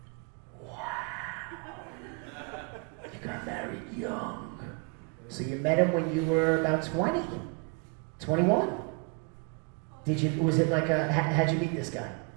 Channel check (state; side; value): quieter; left; 30.8 dB